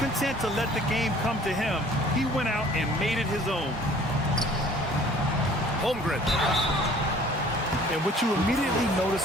content to let the game come to him, he went out and made it his own. Holmgren. And what you immediately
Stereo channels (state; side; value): normal; both; correlation 0.52